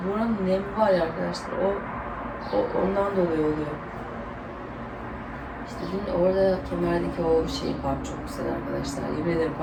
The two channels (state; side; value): identical; both; correlation 1.00